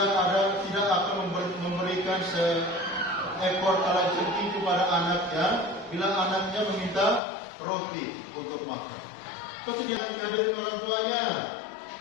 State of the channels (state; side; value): drops out; right; at 7.2 s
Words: akan memberikan seekor kalajengking kepada anaknya bila anaknya meminta roti untuk makan. Pasti dia menghadirkan orang tuanya.